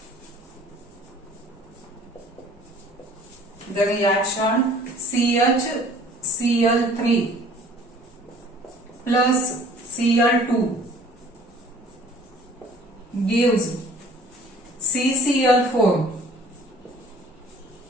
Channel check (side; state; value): both; normal; correlation 0.52